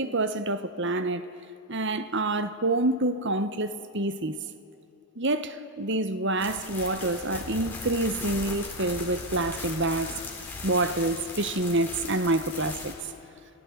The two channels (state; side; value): normal; both; correlation 0.06